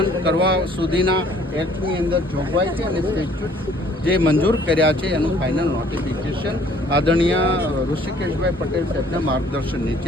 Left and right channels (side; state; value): both; normal; correlation 0.58